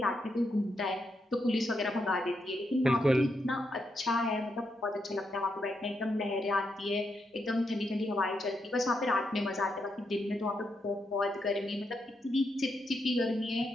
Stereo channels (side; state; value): both; normal; correlation 0.81